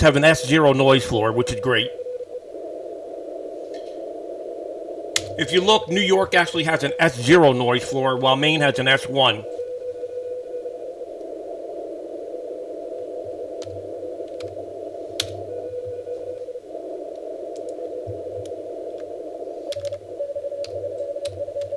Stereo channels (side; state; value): both; identical; correlation 1.00